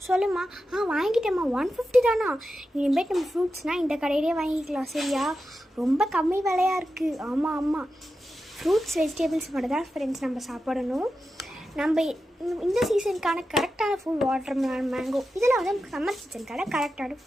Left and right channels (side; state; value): both; normal; correlation 0.90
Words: சொல்லுமா. வாங்கிட்டேம்மா. 150 தானா? இனிமேட்டு நம்ம ஃப்ரூட்ஸ்னால் இந்த கடையிலே வாங்கிக்கலாம். சரியா? ரொம்ப கம்மி விலையாக இருக்குது. ஆமாம் ஆமாம், ஃப்ரூட்ஸ் வெஜிடபிள்ஸ் மட்டும் தான் ஃப்ரெண்ட்ஸ் நம்ம சாப்பிடணும். நம்ம இந்த சீசனுக்கான கரெக்டான ஃபுட் வாட்டர் மெலன், மேங்கோ, இதெல்லாம் வந்து சம்மர் சீசனுக்கான கரெக்டான